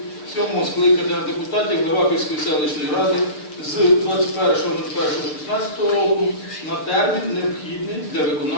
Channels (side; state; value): right; late; 6.7 ms